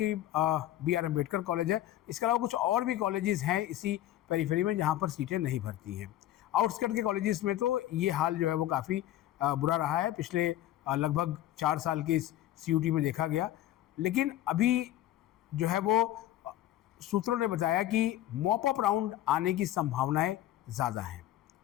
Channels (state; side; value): quieter; right; 13.5 dB